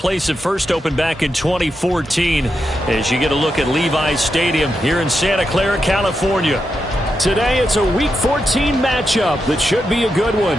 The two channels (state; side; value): normal; both; correlation 0.86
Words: that first opened back in 2014 as you get a look at Levi's Stadium here in Santa Clara, California. Today it's a Week 14 matchup that should be a good one,